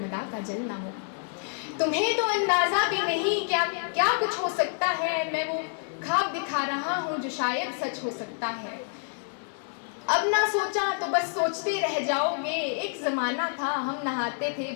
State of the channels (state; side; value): silent; right; 59 dB below the other